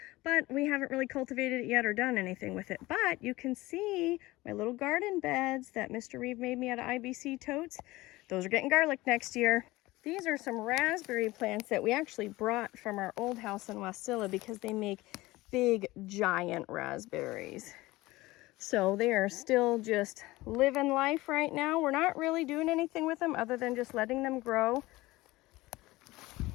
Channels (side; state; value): right; quieter; 19.4 dB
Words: but we haven't really cultivated it yet or done anything with it. But you can see my little garden beds that Mr. Reeve made me out of IBC totes. Those are getting garlic next year. These are some raspberry plants that we actually brought from our old house in Wasilla because they make big, giant raspberries. So they are still just living life right now. We're not really doing anything with them other than just letting them grow.